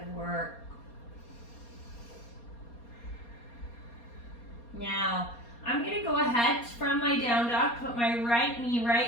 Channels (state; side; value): late; right; 4.2 ms